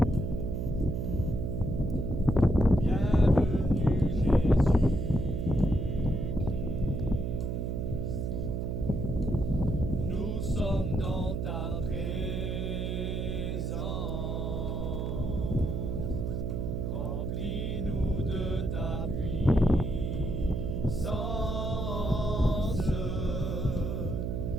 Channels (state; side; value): noise; right; hum, 1 dB below the sound